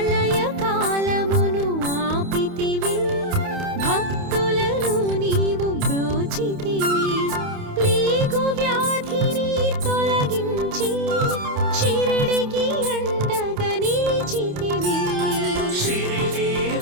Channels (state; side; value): late; left; 28 ms